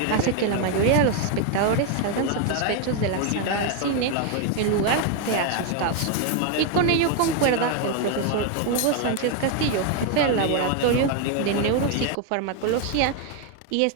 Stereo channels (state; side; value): different; both; correlation 0.01